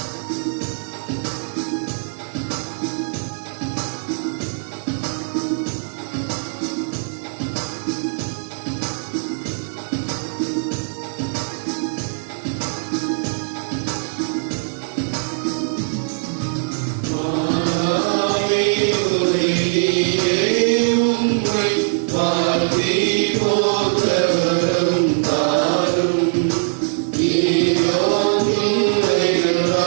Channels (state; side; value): silent; left; digital silence